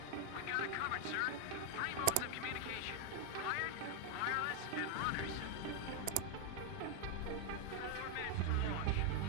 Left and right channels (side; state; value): both; different; correlation 0.00